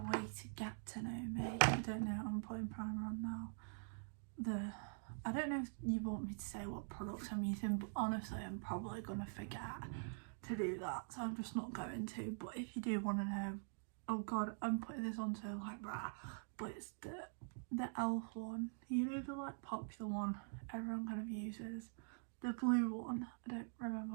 to get to know me. I don't know, I'm putting primer on now. I don't know if you want me to say what products I'm using, but honestly I'm probably gonna forget to do that, so I'm just not going to. But if you do want to know, oh god, I'm putting this on so like rah, but it's the e.l.f. one, you know, the like popular one everyone kind of uses, the blue one. I don't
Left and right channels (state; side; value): silent; left; digital silence